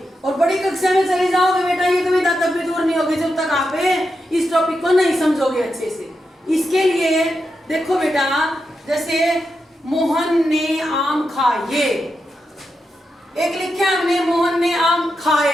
और बड़ी कक्षा में चले जाओगे बेटा, ये कविता तब भी दूर नहीं होगी जब तक आप इस टॉपिक को नहीं समझोगे अच्छे से। इसके लिए देखो बेटा, जैसे मोहन ने आम खाए, एक लिखे हमने मोहन ने आम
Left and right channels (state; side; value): normal; both; correlation 0.87